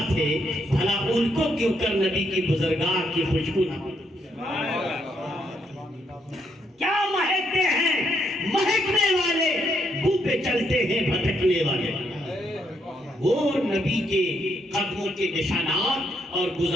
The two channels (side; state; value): both; normal; correlation 0.75